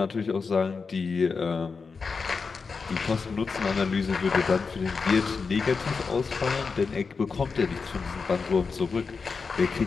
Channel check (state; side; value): quieter; right; 4.9 dB